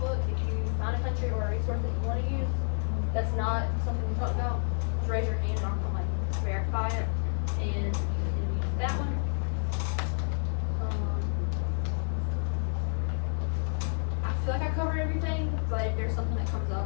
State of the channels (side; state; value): right; silent; digital silence